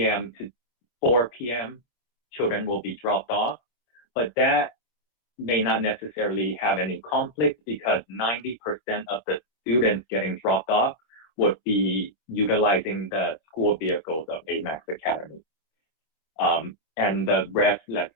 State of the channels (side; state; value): right; late; 26 ms